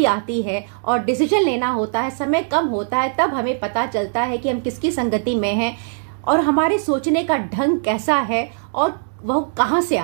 आती है और डिसीजन लेना होता है, समय कम होता है, तब हमें पता चलता है कि हम किसकी संगति में हैं और हमारे सोचने का ढंग कैसा है और वह कहाँ से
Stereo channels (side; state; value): left; silent; digital silence